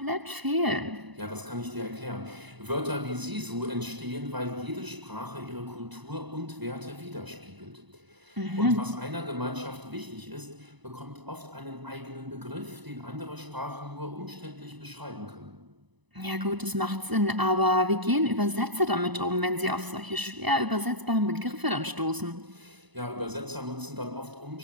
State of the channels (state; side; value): late; left; 1.0 ms